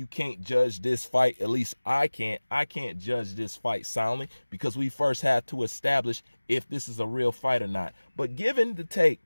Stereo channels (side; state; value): both; inverted; correlation -1.00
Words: can't judge this fight. At least I can't. I can't judge this fight soundly because we first have to establish if this is a real fight or not. But given the take